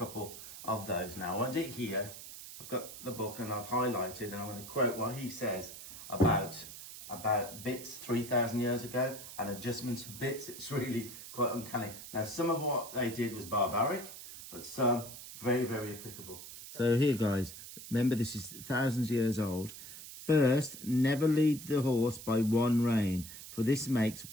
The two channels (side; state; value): right; noise; hiss, 13 dB below the sound